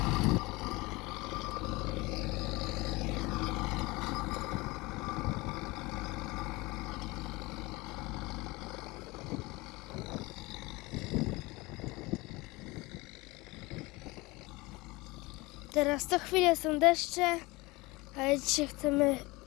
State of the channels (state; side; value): quieter; right; 23.0 dB